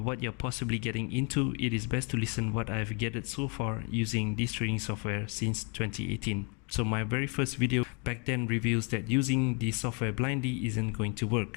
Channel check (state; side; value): quieter; right; 35.4 dB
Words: what you're possibly getting into, it is best to listen what I've gathered so far using this trading software since 2018. So my very first video back then reveals that using the software blindly isn't going to